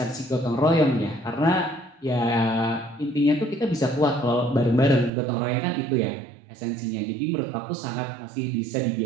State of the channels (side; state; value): left; drops out; at 5.1 s